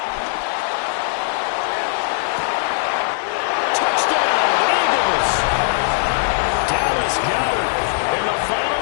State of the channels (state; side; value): silent; right; 65 dB below the other